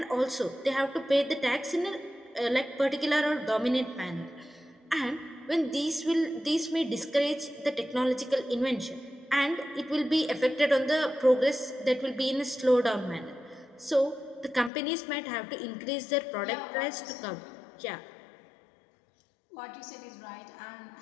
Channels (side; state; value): right; drops out; at 14.7 s